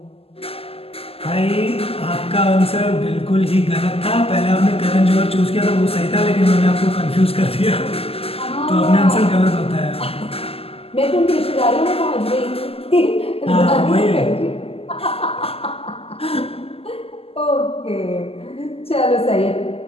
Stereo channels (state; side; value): late; right; 0.28 ms